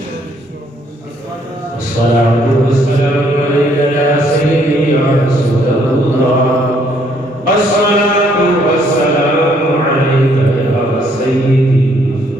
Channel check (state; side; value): normal; both; correlation 0.67